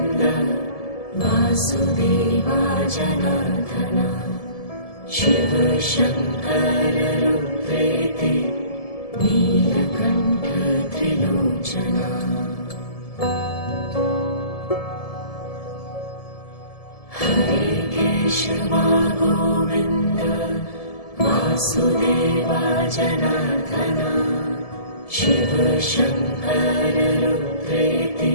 Vasudeva जनार्दना Shiv Shankar रुद्रेति Neelkanth Trilochana Hare Keshwa Govind Vasudeva जनार्दना Shiv Shankar रुद्रेति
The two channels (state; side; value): late; right; 1.7 ms